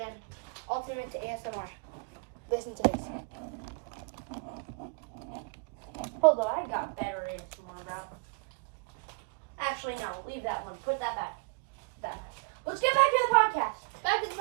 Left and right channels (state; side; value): quieter; left; 33.5 dB